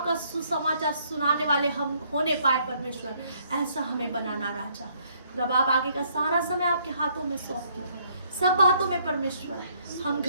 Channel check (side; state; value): both; inverted; correlation -0.67